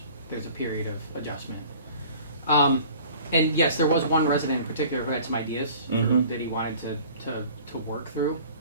a period of adjustment. And yes, there was one resident in particular who had some ideas Mhm. that he wanted to work through.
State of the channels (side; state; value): both; inverted; correlation -0.47